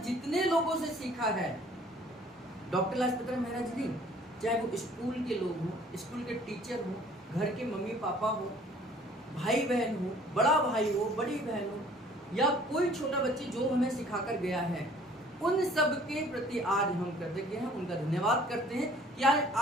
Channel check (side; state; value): both; normal; correlation 0.55